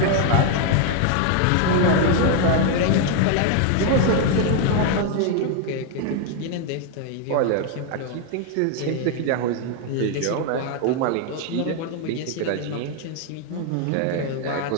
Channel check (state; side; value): different; both; correlation 0.01